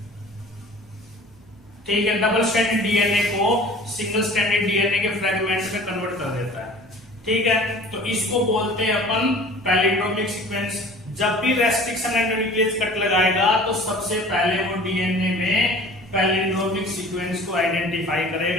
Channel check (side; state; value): right; noise; hum, 28 dB below the sound